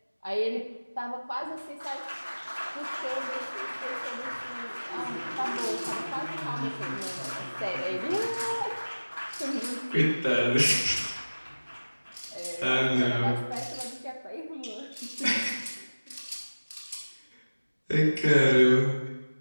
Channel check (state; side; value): inverted; both; correlation -1.00